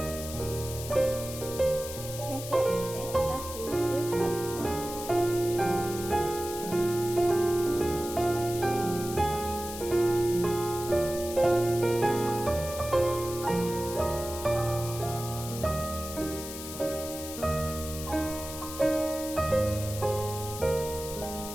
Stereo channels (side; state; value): left; noise; hiss, 10 dB below the sound